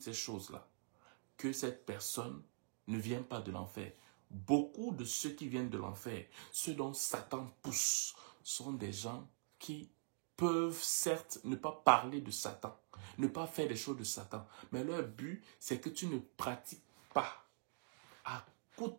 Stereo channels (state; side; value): silent; left; digital silence